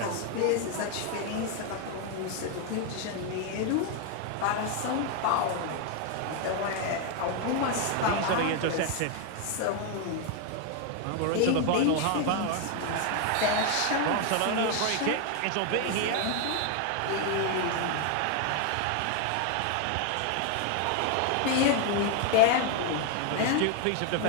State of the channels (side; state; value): both; different; correlation 0.01